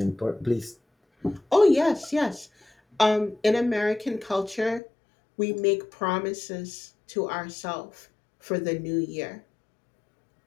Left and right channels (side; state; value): right; drops out; at 4.8 s